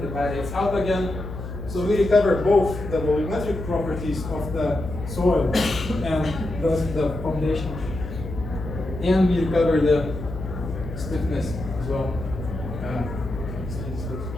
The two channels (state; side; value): noise; left; hum, 9 dB below the sound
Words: it dilates out again. So we recover both the volumetric properties of the soil and thus the foundation, and we recover the stiffness as well.